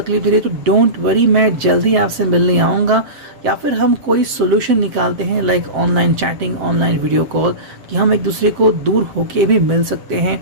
दे रही है, तो डोंट वरी, मैं जल्दी आपसे मिलने आऊँगा। या फिर हम कोई सोल्यूशन निकालते हैं like online chatting, online video call, कि हम एक दूसरे को दूर होके भी मिल सकते हैं,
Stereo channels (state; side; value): late; left; 7.6 ms